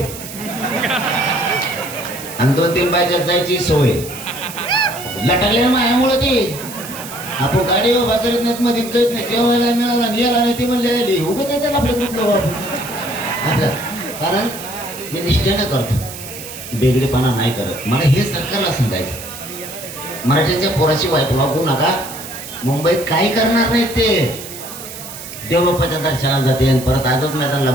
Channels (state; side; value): noise; right; hiss, 12 dB below the sound